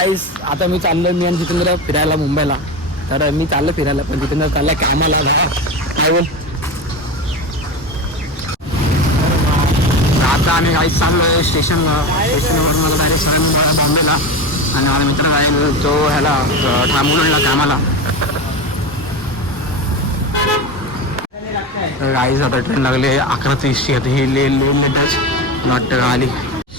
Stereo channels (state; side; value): normal; both; correlation 0.23